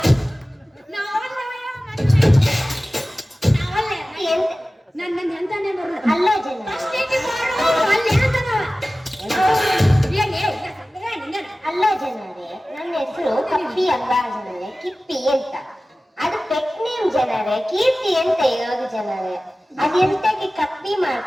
ನನ್ನ ಎಂತಾನೆ ಬರಲ್ಲ ಅಲ್ಲೋ ಜನ ಫಸ್ಟ್ ನೀತಿ ಮಾಡು ಅಲ್ಲಿ ಅಂತದ ಅಲ್ಲ ಜನರೇ, ನನ್ನ ಹೆಸರು ಕಪ್ಪಿ ಅಲ್ಲ ಜನರೇ, ಕಿಪ್ಪಿ ಅಂತ. ಅದು ಪೆಟ್ ನೇಮ್ ಜನರೇ, ಕೀರ್ತಿ ಅಂತ ಇರೋದು ಜನರೇ. ಅದೆಂತಕ್ಕೆ ಕಪ್ಪಿ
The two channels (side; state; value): both; normal; correlation 0.96